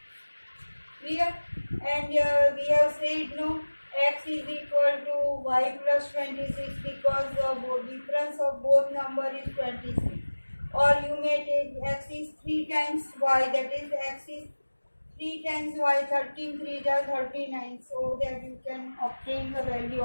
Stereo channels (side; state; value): both; inverted; correlation -1.00